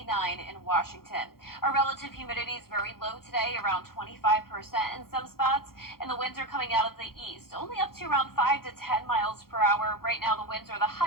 in Washington. Our relative humidity is very low today, around 25% in some spots, and the winds are coming out of the east, only up to around 5 to 10 miles per hour. Right now, the winds are the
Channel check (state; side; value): late; right; 0.93 ms